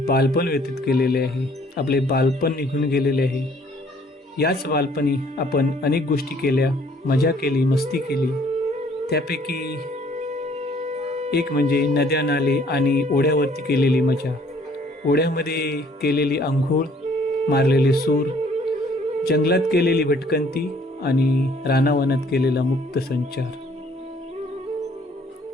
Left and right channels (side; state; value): both; normal; correlation 0.60